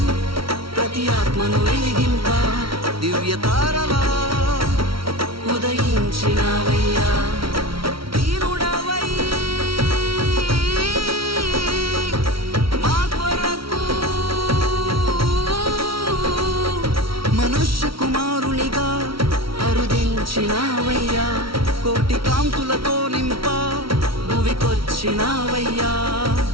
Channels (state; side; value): late; left; 0.75 ms